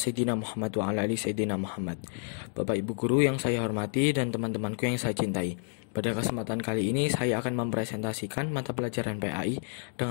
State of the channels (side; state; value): right; silent; 58 dB below the other